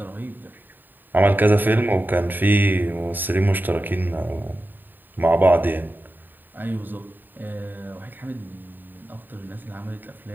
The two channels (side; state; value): left; late; 0.091 ms